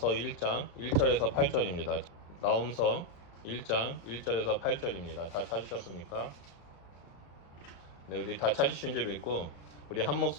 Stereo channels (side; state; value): right; late; 35 ms